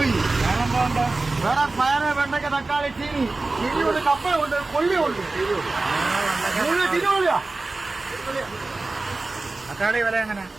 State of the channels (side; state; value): left; quieter; 3.3 dB